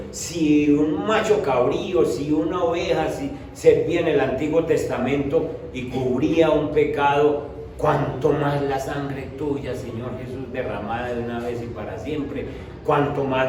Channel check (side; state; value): both; identical; correlation 1.00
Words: Si un macho cabrío, si una oveja, si servía en el Antiguo Testamento y cubría un pecado, cuánto más la sangre tuya, Señor Jesús, derramada de una vez y para siempre, cuánto más